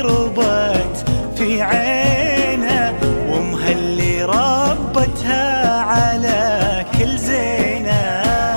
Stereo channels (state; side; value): inverted; both; correlation -1.00